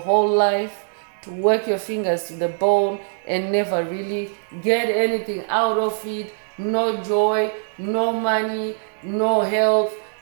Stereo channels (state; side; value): silent; left; digital silence